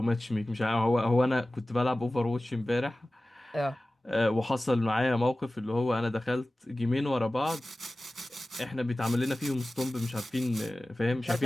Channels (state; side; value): normal; both; correlation 0.97